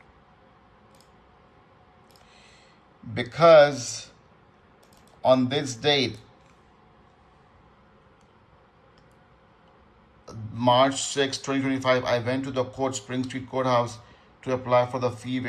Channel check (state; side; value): identical; both; correlation 1.00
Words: Because on this date, March 6, 2025, I went to the Spring Street Courthouse to apply for the fee